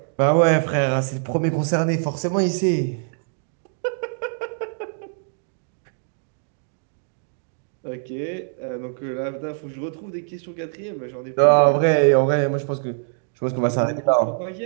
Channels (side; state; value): left; silent; digital silence